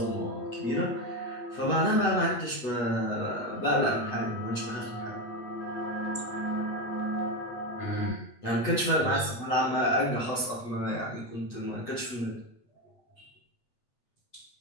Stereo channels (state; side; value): late; right; 8.1 ms